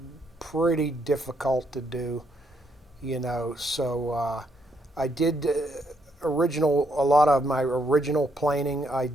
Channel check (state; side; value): normal; both; correlation 0.74